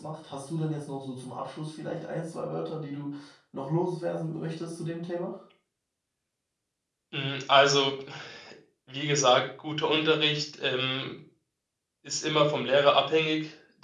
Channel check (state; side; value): identical; both; correlation 1.00